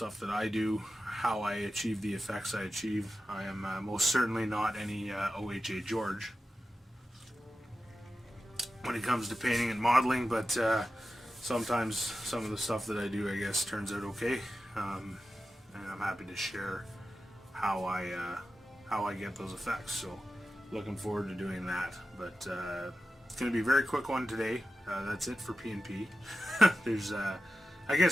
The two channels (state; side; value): normal; both; correlation 0.93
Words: that I do, how I achieve the effects I achieve. I am most certainly not any OHA George when it comes to painting and modeling, but sometimes some of the stuff that I do, I guess, turns out okay, and I'm happy to share how I get those effects. So looking forward to doing that. But it's going to be a very quick one today. That's it for P&P. There's I